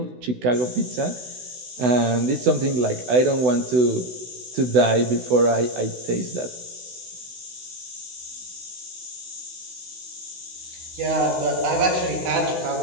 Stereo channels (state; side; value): late; left; 16 ms